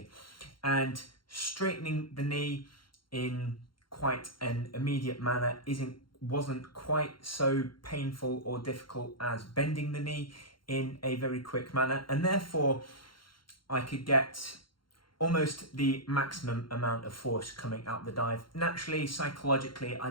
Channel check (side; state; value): right; late; 0.73 ms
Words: and straightening the knee in quite an immediate manner wasn't quite so painful or difficult as bending the knee in a very quick manner, and therefore I could get almost the maximum amount of force coming out the dive. Naturally, psychologically, I